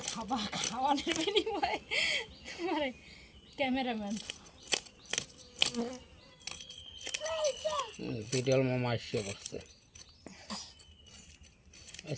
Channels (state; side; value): identical; both; correlation 1.00